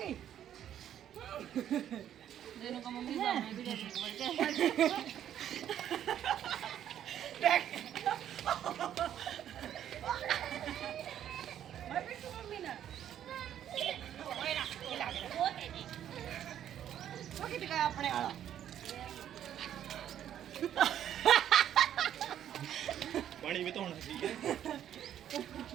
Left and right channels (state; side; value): quieter; left; 10.5 dB